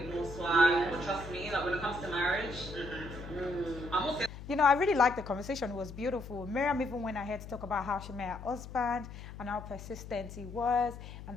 more swag, but trust me, like when it comes to marriage, I'm also... You know, I really liked the conversation. It was beautiful. Miriam even went ahead to talk about how she met her husband and how persistent he was.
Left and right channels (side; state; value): left; noise; hum, 12 dB below the sound